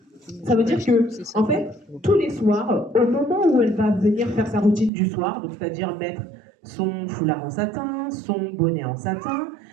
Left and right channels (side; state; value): left; drops out; at 4.9 s